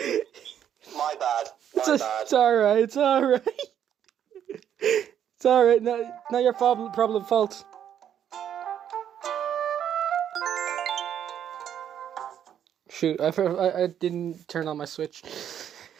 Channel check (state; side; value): quieter; left; 9.6 dB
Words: My bad. It's alright. It's alright. Not your problem fault. Shoot, I didn't turn on my switch.